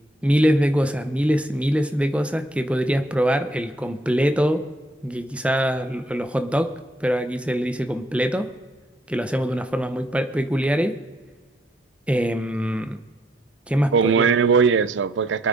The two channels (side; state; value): both; normal; correlation 0.70